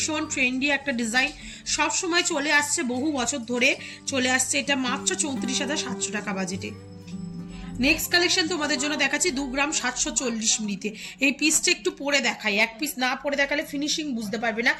ট্রেন্ডি একটা ডিজাইন, সব সময় চলে আসছে, বহু বছর ধরে চলে আসছে। এটা মাত্র 34,700 টাকা বাজেটে। নেক্সট কালেকশন তোমাদের জন্য দেখাচ্ছি 2 গ্রাম 740 মিলিতে। এই পিসটা একটু পরে দেখাই, এক পিস না পরে দেখালে ফিনিশিং বুঝতে পারবে না।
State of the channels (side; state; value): both; identical; correlation 1.00